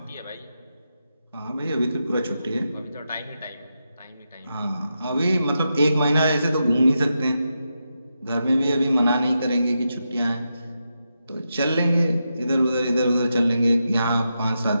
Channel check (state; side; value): inverted; both; correlation -0.87